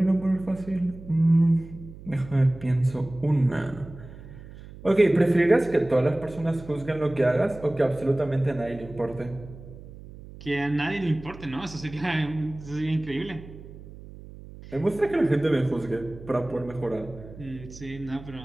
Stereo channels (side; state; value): right; noise; hum, 16 dB below the sound